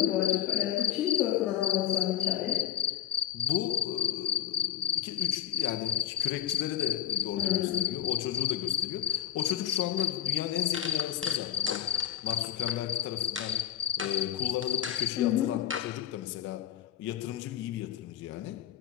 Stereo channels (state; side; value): quieter; right; 10.2 dB